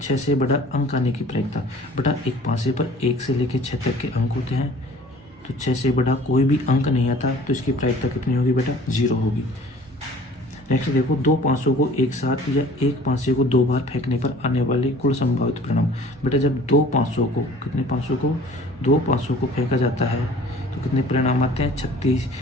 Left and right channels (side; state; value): both; normal; correlation 0.49